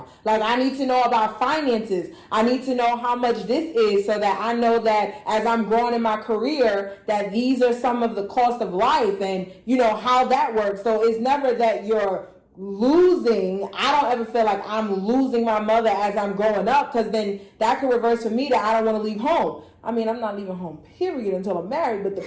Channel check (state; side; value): identical; both; correlation 1.00